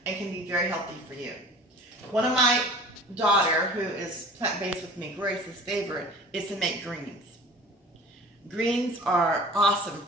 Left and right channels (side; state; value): both; normal; correlation 0.44